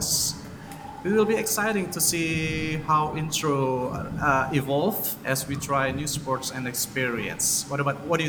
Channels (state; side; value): identical; both; correlation 1.00